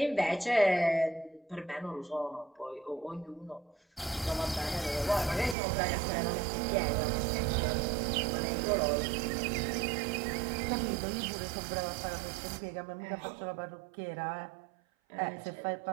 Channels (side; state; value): left; drops out; at 5.6 s